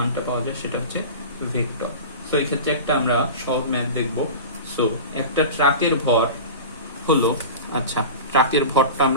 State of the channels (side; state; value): both; inverted; correlation -0.32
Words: পাওয়া যায় সেটা হচ্ছে ভেক্টর। সো এই ক্ষেত্রে একটা আমরা সহজ ম্যাথ দেখব। সো একটা ট্রাকের ভর হলো, আচ্ছা ট্রাকের ভরটা